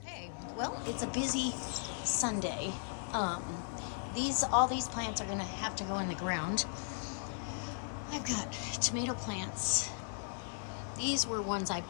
Hey, well, it's a busy Sunday. All these plants are gonna have to go in the ground. I've got tomato plants. These were ones I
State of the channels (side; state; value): right; silent; 53 dB below the other